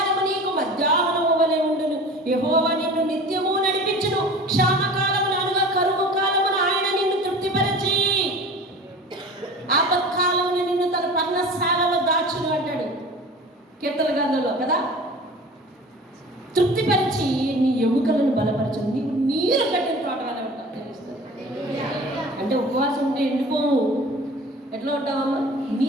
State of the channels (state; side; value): normal; both; correlation 0.40